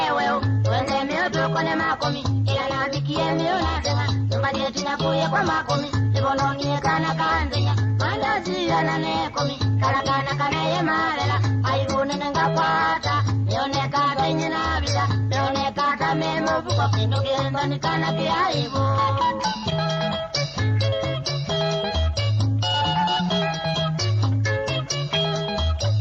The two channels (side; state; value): both; identical; correlation 1.00